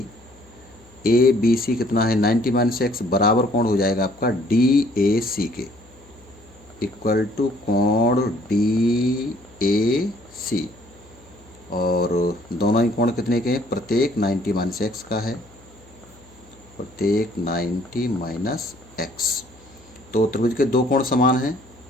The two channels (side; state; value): left; noise; hum, 26 dB below the sound